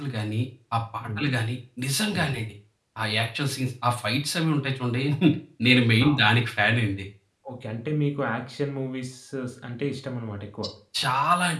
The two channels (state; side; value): identical; both; correlation 1.00